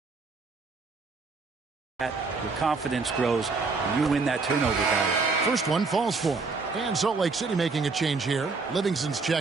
that. Your confidence grows, and you win that turnover battle. First one falls for him. And Salt Lake City making a change here. Livingston's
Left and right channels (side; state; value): left; quieter; 4.2 dB